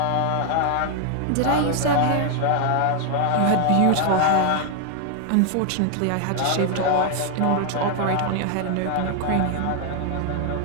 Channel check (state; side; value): different; both; correlation 0.00